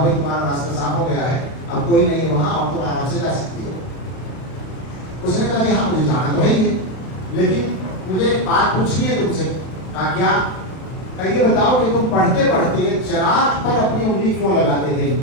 بھائی تمہارا راستہ صاف ہو گیا ہے, اب کوئی نہیں وہاں, اور تم آرام سے جا سکتی ہو. اس نے کہا کہ ہاں مجھے جانا تو ہے ہی, لیکن مجھے ایک بات پوچھنی ہے تم سے. کہا کیا؟ یہ بتاؤ کہ تم پڑھتے پڑھتے چراغ پر اپنی انگلی کیوں لگاتے تھے,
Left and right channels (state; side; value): late; right; 32 ms